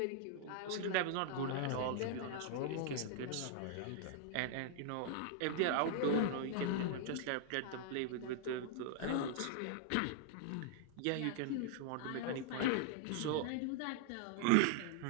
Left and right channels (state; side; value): different; both; correlation -0.01